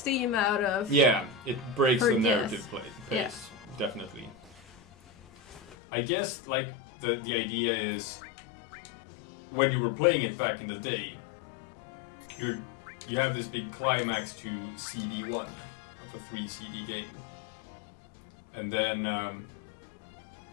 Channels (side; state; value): right; drops out; at 5.8 s